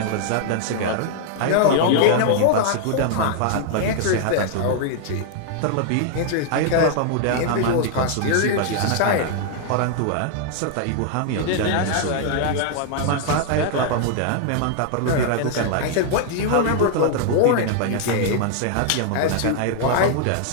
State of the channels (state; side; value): different; both; correlation -0.01